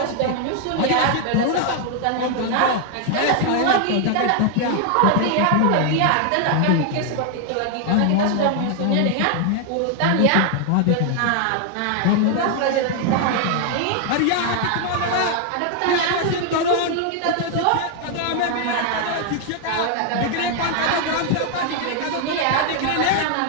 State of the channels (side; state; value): both; different; correlation 0.00